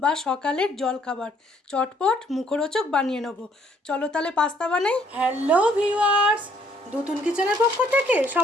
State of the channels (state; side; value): normal; both; correlation 0.65